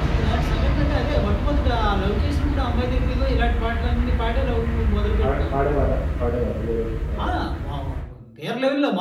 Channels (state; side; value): identical; both; correlation 1.00